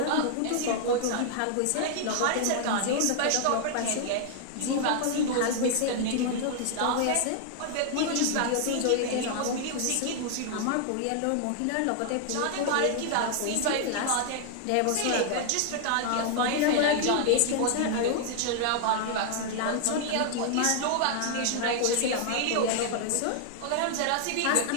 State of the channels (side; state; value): both; different; correlation 0.00